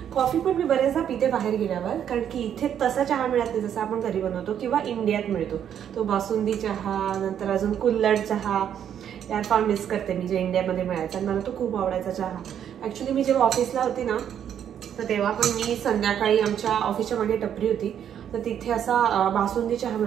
कॉफी पण मी बरेचदा पिते बाहेर गेल्यावर, कारण की इथे तसा चहा मिळत नाही जसा आपण घरी बनवतो किंवा इंडियात मिळतो तो. बासुंदी चहा, नंतर अजून कुल्हड चहा, यार फार मिस करते मी जे इंडियामध्ये मिळायचा. मला तो खूप आवडायचा चहा. ऍक्च्युली मी जेव्हा ऑफिसला होती ना, तर तेव्हा पण मी संध्याकाळी आमच्या ऑफिसच्या मागे टपरी होती, तर तिथे असा बासुंदी चहा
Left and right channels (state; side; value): quieter; left; 9.3 dB